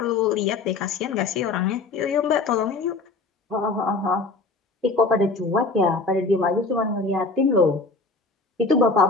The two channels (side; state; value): right; quieter; 3.8 dB